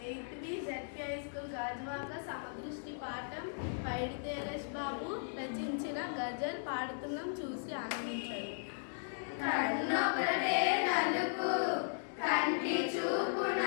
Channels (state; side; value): silent; right; digital silence